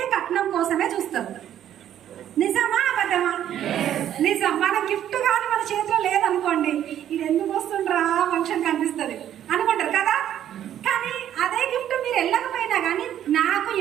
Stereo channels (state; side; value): quieter; left; 10.9 dB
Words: కట్నం కోసమే చూస్తారు. నిజమా అబద్ధమా? నిజం. మన గిఫ్ట్ కానీ మన చేతిలో లేదనుకోండి, ఇది ఎందుకు వస్తుండ్రా ఫంక్షన్ కనిపిస్తుంది అనుకుంటారు కదా. కానీ అదే గిఫ్ట్ మీరు వెళ్ళకపోయినా కానీ, నాకు